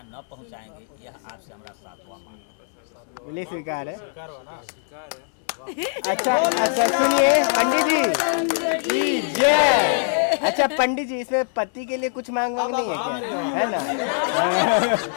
न पहुंचाएंगे, यह आपसे हमारा सातवां मांग है। बोलिए स्वीकार है। स्वीकार हुआ ना? स्वीकार अच्छा है। अच्छा, सुनिए पंडित जी, जय। अच्छा पंडित जी, इसमें पति के लिए कुछ मांग नहीं है क्या? है ना?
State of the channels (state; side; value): silent; right; 61 dB below the other